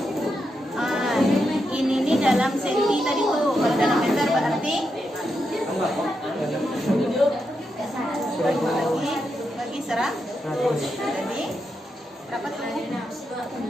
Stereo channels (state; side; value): normal; both; correlation 0.84